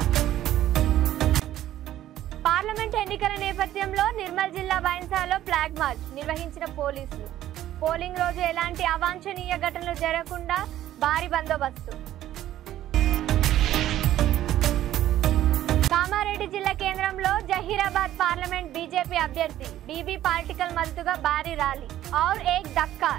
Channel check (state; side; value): quieter; left; 13.0 dB